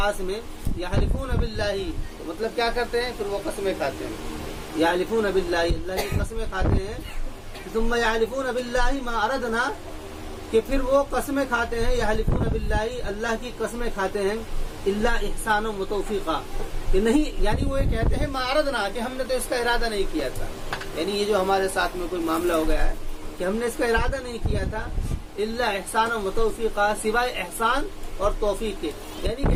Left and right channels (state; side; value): identical; both; correlation 1.00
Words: میں، یحلفون باللہ، تو مطلب کیا کرتے ہیں، پھر وہ قسمیں کھاتے ہیں، یحلفون باللہ، اللہ کی قسمیں کھاتے ہیں، ثم یحلفون باللہ ما اردنا، کہ پھر وہ قسمیں کھاتے ہیں، یحلفون باللہ، اللہ کی قسمیں کھاتے ہیں، الا احسان و توفیقا، کہ نہیں، یعنی وہ یہ کہتے ہیں ما اردنا، کہ ہم نے تو اس کا ارادہ نہیں کیا تھا، یعنی یہ جو ہمارے ساتھ میں کوئی معاملہ ہو گیا ہے کہ ہم نے اس کا ارادہ نہیں کیا تھا، الا احسان و توفیقا، سوائے احسان اور توفیق کے، یعنی